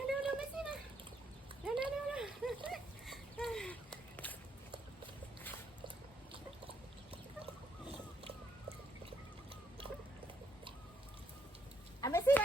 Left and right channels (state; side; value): normal; both; correlation 0.74